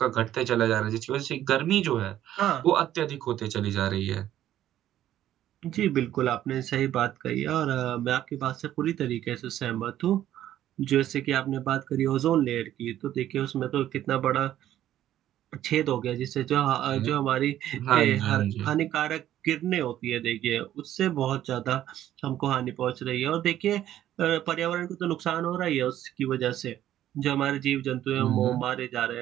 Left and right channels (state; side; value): quieter; left; 12.2 dB